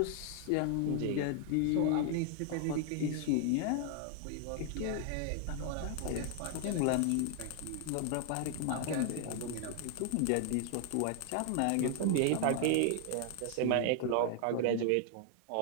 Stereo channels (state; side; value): different; both; correlation 0.00